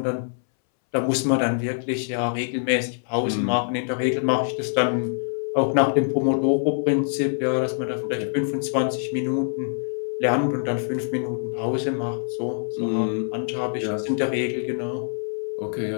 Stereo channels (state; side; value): silent; right; 62 dB below the other